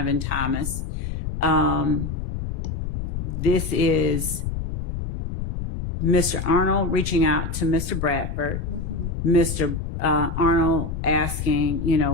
Thomas. This is Mr. Arnold reaching out to Mr. Bradford, Mr. Arnold asking, you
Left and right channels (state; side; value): noise; left; rumble, 4 dB below the sound